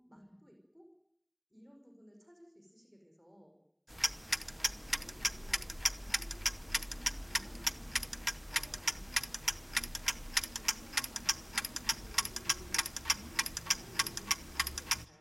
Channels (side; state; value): both; identical; correlation 1.00